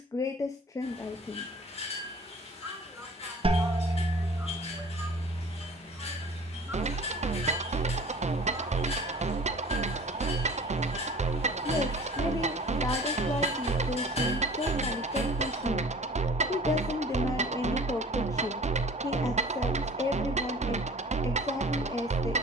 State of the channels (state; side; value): normal; both; correlation 0.46